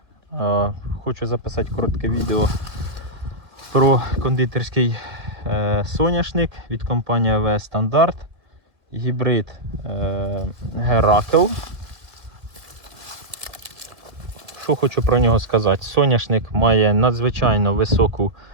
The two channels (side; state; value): left; late; 2.1 ms